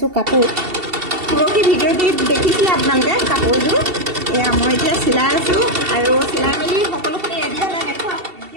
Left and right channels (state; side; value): late; left; 2.7 ms